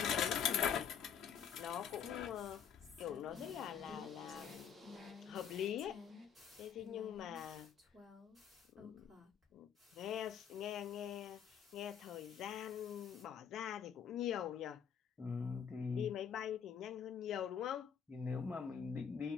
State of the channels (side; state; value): right; quieter; 7.8 dB